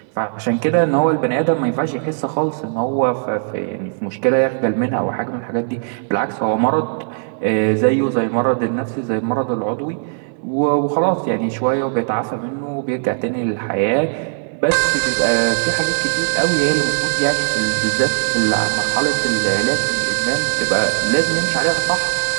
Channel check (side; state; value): left; silent; digital silence